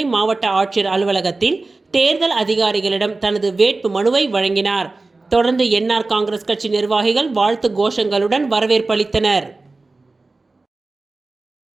மாவட்ட ஆட்சியர் அலுவலகத்தில் தேர்தல் அதிகாரிகளிடம் தனது வேட்பு மனுவை வழங்கினார். தொடர்ந்து என்ஆர் காங்கிரஸ் கட்சி நிர்வாகிகள் வாழ்த்து கோஷங்களுடன் வரவேற்பளித்தனர்.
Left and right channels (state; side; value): quieter; left; 3.4 dB